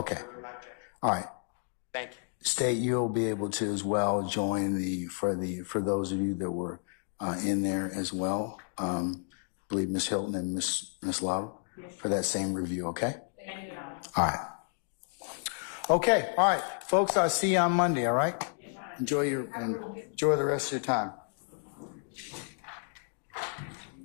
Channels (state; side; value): silent; right; 57 dB below the other